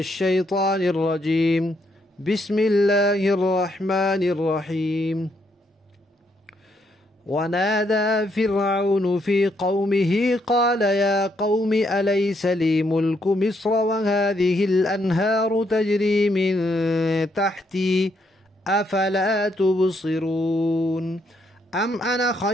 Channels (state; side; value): normal; both; correlation 0.75